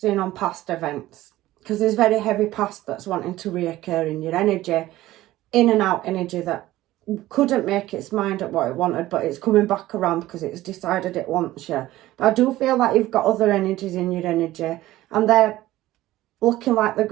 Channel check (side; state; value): left; quieter; 16.0 dB